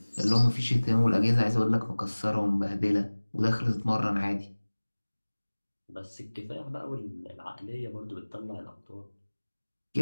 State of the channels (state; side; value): inverted; both; correlation -1.00